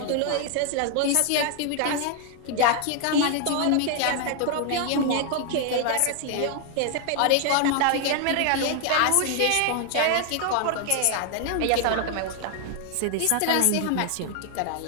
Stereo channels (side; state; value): both; different; correlation 0.00